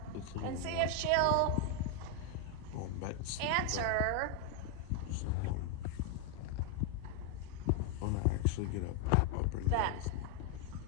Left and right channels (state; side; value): different; both; correlation 0.01